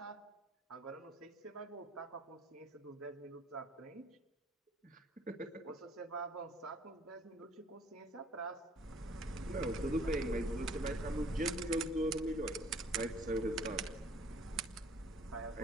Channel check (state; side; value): normal; both; correlation 0.58